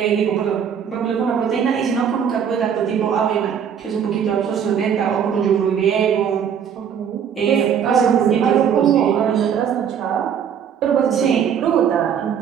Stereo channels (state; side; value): quieter; left; 8.0 dB